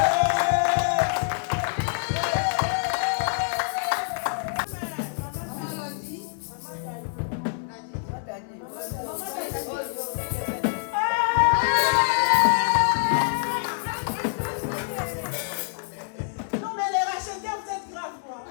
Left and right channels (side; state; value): right; silent; digital silence